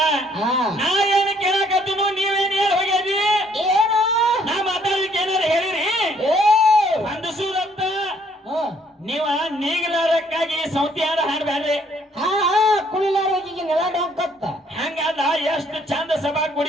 ನಾ ಏನು ಕೇಳಕತ್ತೀನು ನೀವೇನು ಹೇಳಿ ಹೋಗ್ಯಾರಿ ಏನು ನಾ ಮಾತಾಡಲಿಕ್ಕೆ ಏನಾರು ಹೇಳಿರಿ ಅಂದಸೂದಂತ ನೀವ ನೀಗಲಾರಕ್ಕಾಗಿ ಸೌತಿ ಹಾಡು ಹಾಡ್ಬ್ಯಾಡ್ರಿ ಕುಳಿಲಾರೋಗಿಗೆ ನೆಲ ಡೊಂಕತ್ತ ಹಂಗಲ್ಲ ಎಷ್ಟು ಚಂದ ಸಭಾ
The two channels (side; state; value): both; normal; correlation 0.65